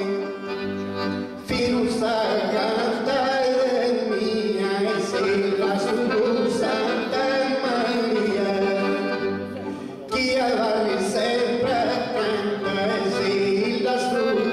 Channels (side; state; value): both; identical; correlation 1.00